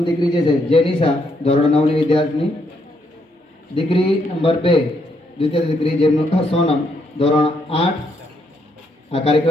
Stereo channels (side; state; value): both; normal; correlation 0.75